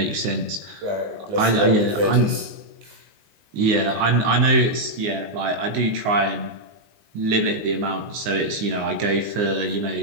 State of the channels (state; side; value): late; left; 19 ms